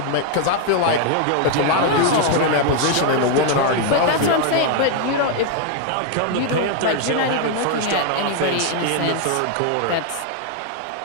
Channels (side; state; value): both; different; correlation 0.00